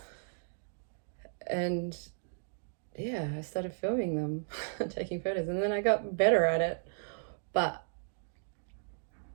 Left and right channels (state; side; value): silent; left; digital silence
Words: And yeah, I started filming them, taking photos, and then I got better at it. But